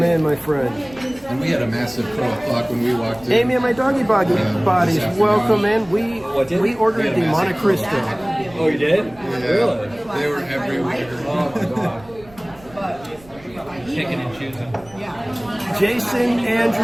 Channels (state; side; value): noise; right; rumble, 24 dB below the sound